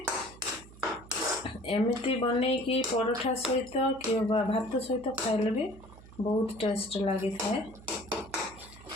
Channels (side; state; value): right; noise; hum, 20 dB below the sound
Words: ଏମିତି ବନେଇକି ପରଠା ସହିତ କିମ୍ବା ଭାତ ସହିତ ଖାଇଲେ ବି ବହୁତ ଟେଷ୍ଟ ଲାଗିଥାଏ।